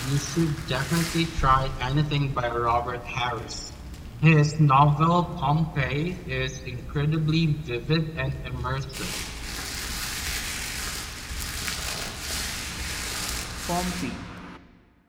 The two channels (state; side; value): identical; both; correlation 1.00